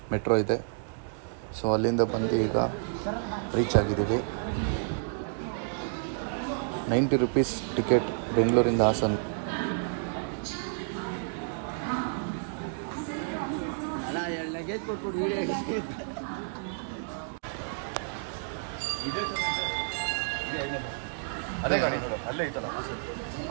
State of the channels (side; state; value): left; silent; digital silence